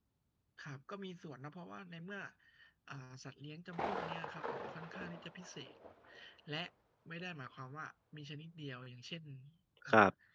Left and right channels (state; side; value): identical; both; correlation 1.00